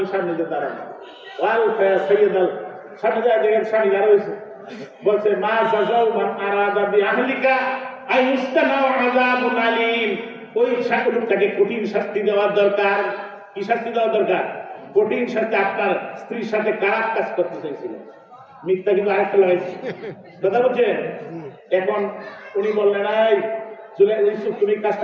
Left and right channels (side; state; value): both; identical; correlation 1.00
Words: সামনে যে দাঁড়ানো, ওয়াল ফায়া সাইয়্যিদাল সামনে যা দেখে স্বামী দাঁড়া হয়েছে, বলছে মা জাযাউ মান আরাদা বি আহলিকা আইস্তানাউ আযাবুন আলীম, ওই লোকটাকে কঠিন শাস্তি দেওয়ার দরকার। কি শাস্তি দেওয়া দরকার? কঠিন শাস্তি। আপনার স্ত্রীর সাথে খারাপ কাজ করতে চাইছিল, মিথ্যা কিন্তু আরেকটা লাগাইছে, কথা বলছেন। এখন উনি বললেন এই ইউসুফ তুমি